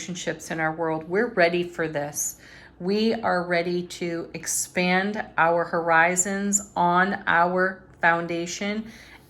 in our world. We're ready for this. We are ready to expand our horizons on our foundation,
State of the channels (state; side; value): identical; both; correlation 1.00